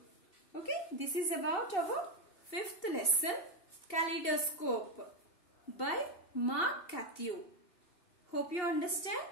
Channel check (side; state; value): right; late; 2.8 ms